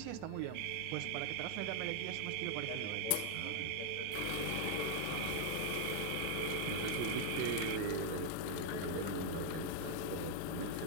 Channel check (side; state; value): both; different; correlation 0.00